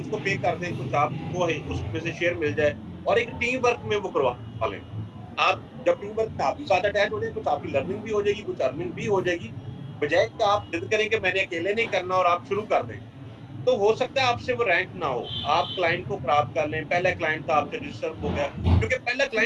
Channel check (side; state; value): both; identical; correlation 1.00